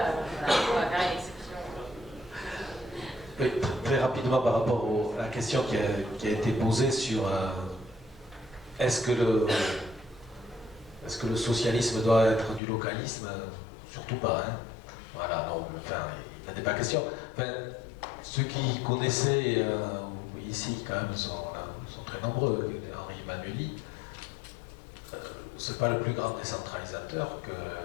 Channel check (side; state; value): right; drops out; at 12.6 s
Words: on va faire une exception. Oui, très rapidement par rapport à la question qui a été posée sur est-ce que le socialisme doit être du localisme? Surtout pas, hein. Voilà, non, enfin, il n'en est pas question. Enfin, ceux qui connaissaient ici, quand même, sont très nombreux. Henri Emmanuelli, c'est pas le plus grand décentralisateur que